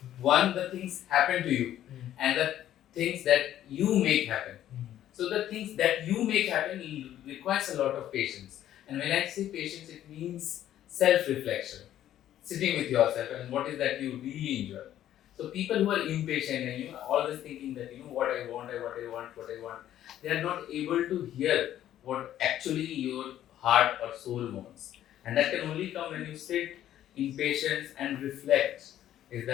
One, the things happen to you, and the things that you make happen. So the things that you make happen requires a lot of patience. And when I say patience, it means self-reflection, sitting with yourself and what is that you really enjoy. So people who are impatient and always thinking that what I want, what I want, they are not able to hear what actually your heart or soul wants. And that can only come when you sit in patience and reflect. Is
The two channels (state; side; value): quieter; right; 11.9 dB